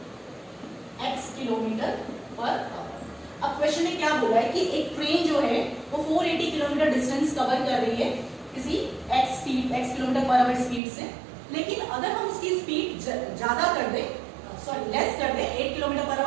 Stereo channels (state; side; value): drops out; left; at 10.8 s